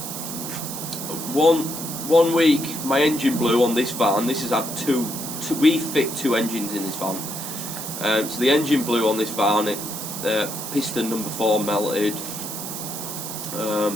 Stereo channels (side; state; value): right; noise; hiss, 7 dB below the sound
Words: one week my engine blew on this van. This has had we fit 2 engines in this van, so the engine blew on this van. Piston number 4 melted.